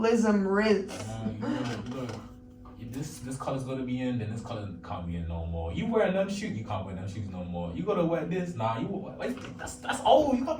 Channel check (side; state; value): both; identical; correlation 1.00